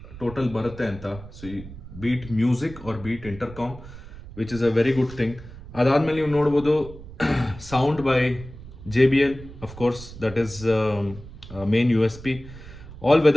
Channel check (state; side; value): noise; right; rumble, 15 dB below the sound